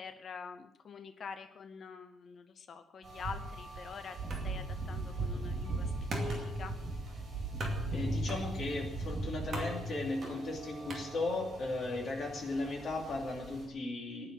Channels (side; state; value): both; normal; correlation 0.74